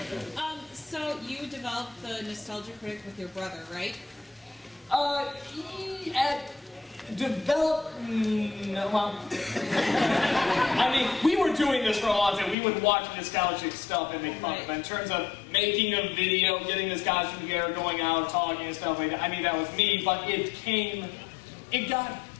So you developed the Nostalgia Critic with your brother, right? I mean, we were doing this for a long time. We would watch nostalgic stuff and make fun of it. In terms of making a video, getting this costume together, going out, talking and stuff like that, I mean, that was me, but it got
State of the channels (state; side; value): drops out; right; at 12.6 s